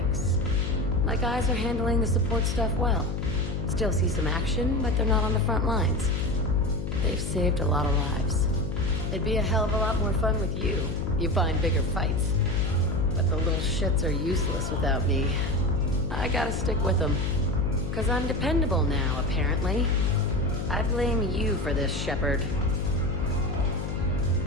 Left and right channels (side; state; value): left; noise; hum, 4 dB below the sound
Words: My guys are handling the support stuff well. Still see some action, but they're not on the front lines. They've saved a lot of lives. It'd be a hell of a lot more fun with you. You find bigger fights. But the little shits are useless without me. I gotta stick with them. 'Cause I'm dependable now, apparently. I blame you for this, Shepard.